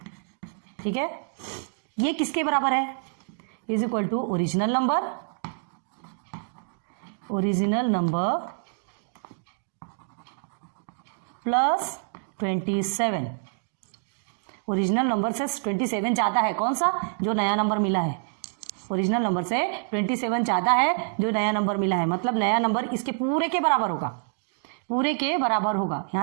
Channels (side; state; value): left; silent; digital silence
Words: ठीक है, ये किसके बराबर है, is equal to original number, original number plus 27, original number से 27 ज़्यादा है, कौन सा, जो नया नंबर मिला है, ओरिजिनल नंबर से 27 ज़्यादा है जो नया नंबर मिला है, मतलब नया नंबर इसके पूरे के बराबर होगा, पूरे के बराबर होगा,